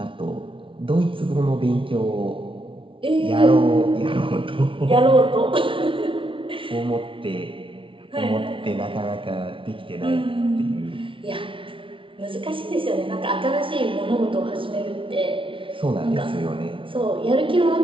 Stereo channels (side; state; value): left; late; 0.25 ms